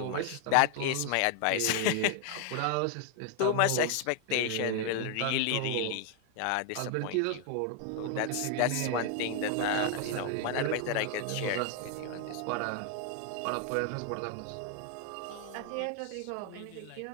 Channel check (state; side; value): different; both; correlation 0.01